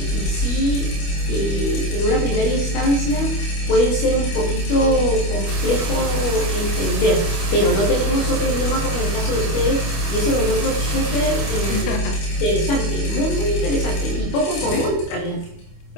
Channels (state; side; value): late; right; 25 ms